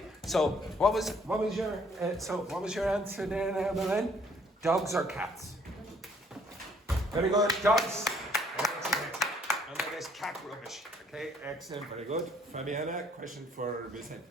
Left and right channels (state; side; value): normal; both; correlation 0.63